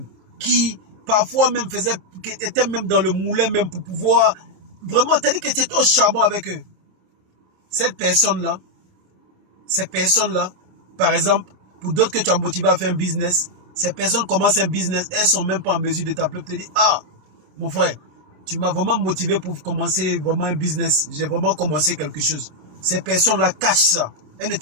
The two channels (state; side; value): late; left; 27 ms